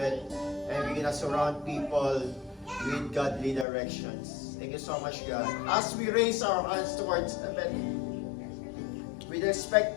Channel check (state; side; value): drops out; right; at 3.7 s